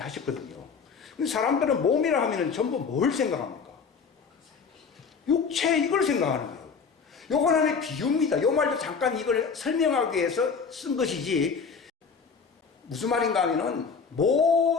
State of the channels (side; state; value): right; quieter; 5.6 dB